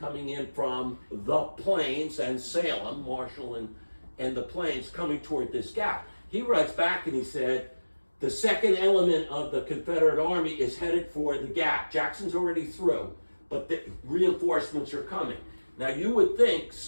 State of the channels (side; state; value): both; inverted; correlation -1.00